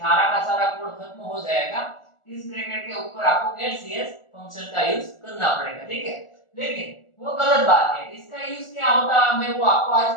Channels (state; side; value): late; right; 1.4 ms